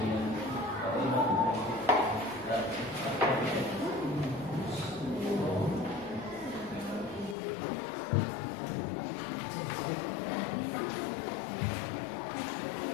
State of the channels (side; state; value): right; drops out; at 7.4 s